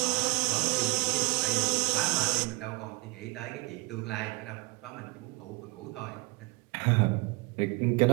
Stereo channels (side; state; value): left; quieter; 26.0 dB